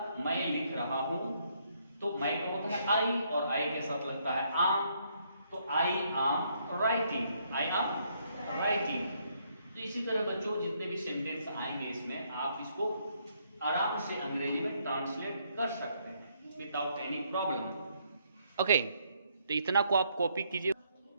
मैं लिख रहा हूं, तो मैं का होता है आई और आई के साथ लगता है आम, तो आई आम राइटिंग, आई आम राइटिंग। तो इसी तरह बच्चों जितने भी सेंटेंस आएंगे इसमें आप इसको आराम से अंग्रेजी में ट्रांसलेट कर सकते हैं विदाउट एनी प्रॉब्लम। ओके, तो इतना को आप कॉपी कीजिए।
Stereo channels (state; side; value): inverted; both; correlation -0.72